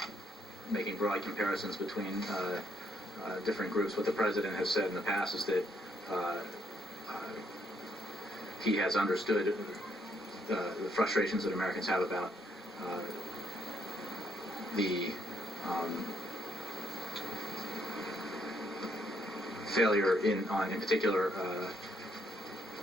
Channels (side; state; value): both; normal; correlation 0.72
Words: making broad comparisons between different groups. What the president has said in the past is that he has understood the frustrations that Americans have about the failure in particular